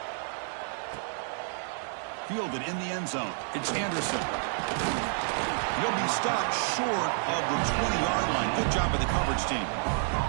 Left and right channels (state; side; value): silent; left; 58 dB below the other